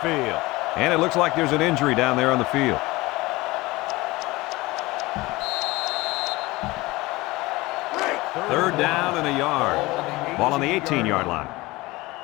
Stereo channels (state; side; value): quieter; right; 21.0 dB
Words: And it looks like there's an injury down there on the field. Third down and a yard. Ball on the 18-yard line.